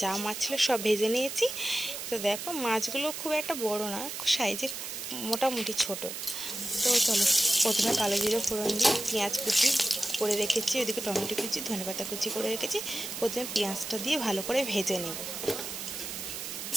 যা মাছ ছিল সব ভেজে নিয়েছি। তো দেখো মাছগুলো খুব একটা বড় না, সাইজে মোটামুটি ছোট। তো চলো প্রথমে কালো জিরে ফোড়ন দিয়ে পেঁয়াজ কুচি করে রেখেছি, ওইদিকে টমেটো কুচি, ধনেপাতা কুচি করে রেখেছি। প্রথমে পেঁয়াজটা দিয়ে ভালো করে ভেজে নেব।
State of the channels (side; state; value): right; noise; hiss, 7 dB below the sound